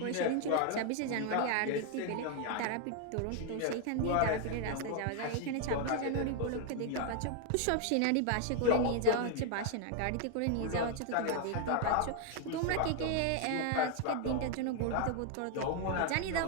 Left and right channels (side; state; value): both; different; correlation 0.00